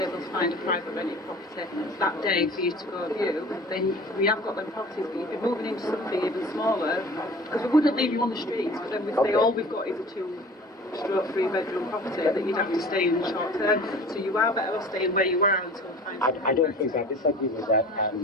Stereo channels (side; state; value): both; normal; correlation 0.42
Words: able to find a private rented property that day for you to go view, then we have got them properties, but you'd be moving into something even smaller, because we wouldn't leave you on the streets, but then we'd say all we've got is a 2-3-bedroom property that you'd have to stay in short term. So you are better off staying where you are until I don't think that. I disagree with that,